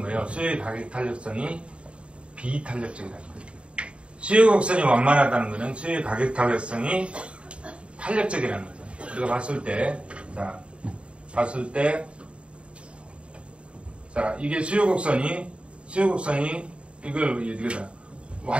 수요의 가격 탄력성이 비탄력적이라는 거예요. 수요 곡선이 완만하다는 것은 수요의 가격 탄력성이 탄력적이라는 거죠. 우리가 봤을 때, 이게 수요 곡선이 이걸 이거다.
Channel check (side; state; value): left; late; 0.058 ms